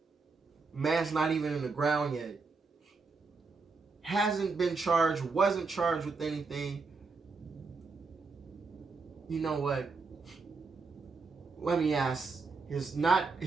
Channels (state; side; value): quieter; left; 4.3 dB